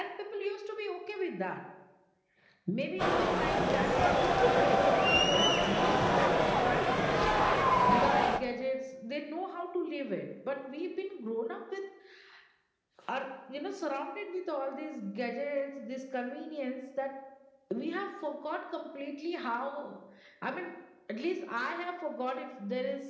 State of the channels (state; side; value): identical; both; correlation 1.00